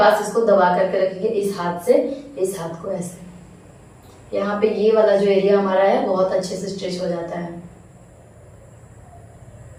इसको दबा करके रखेंगे, इस हाथ से इस हाथ को ऐसे। यहाँ पे ये वाला जो एरिया हमारा है बहुत अच्छे से स्ट्रेच हो जाता है।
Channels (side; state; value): both; identical; correlation 1.00